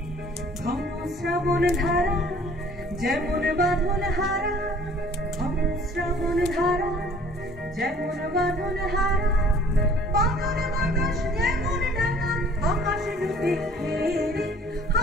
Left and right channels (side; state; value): both; normal; correlation 0.53